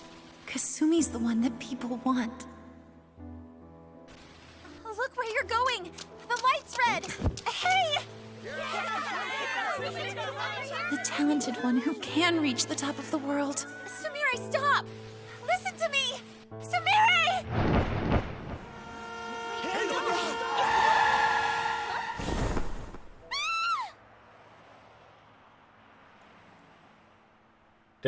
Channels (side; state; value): both; identical; correlation 1.00